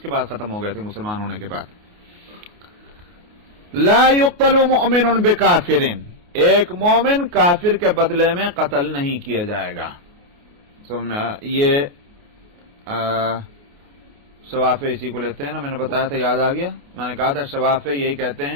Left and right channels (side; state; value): left; late; 28 ms